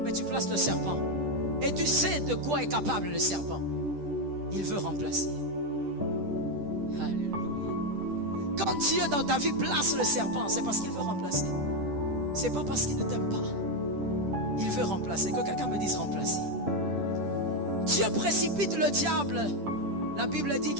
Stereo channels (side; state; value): left; late; 10 ms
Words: Mais tu places le serpent. Et tu sais de quoi est capable le serpent. Il veut remplacer. Alléluia. Quand Dieu dans ta vie place le serpent, c'est parce qu'il veut remplacer. C'est pas parce qu'il ne t'aime pas. Il veut remplacer. Que quelqu'un me dise remplacer. Dieu précipite le diable. La Bible dit